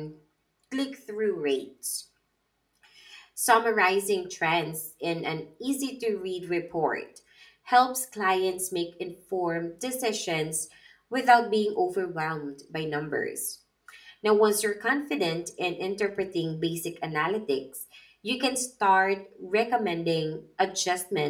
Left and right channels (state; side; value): identical; both; correlation 1.00